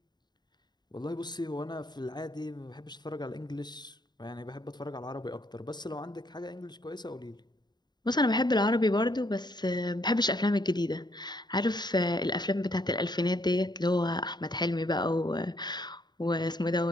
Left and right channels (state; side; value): late; right; 0.21 ms